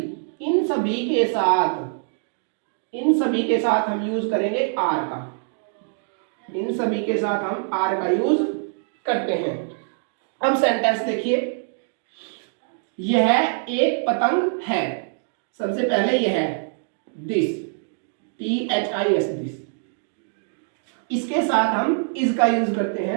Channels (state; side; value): silent; left; digital silence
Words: इन सभी के साथ हम यूज करेंगे आर का। इन सभी के साथ हम आर का यूज करते हैं। अब सेंटेंस देखिए, यह एक पतंग है। सबसे पहले यह है दिस, THIS दिस। इसके साथ हम इज का यूज करते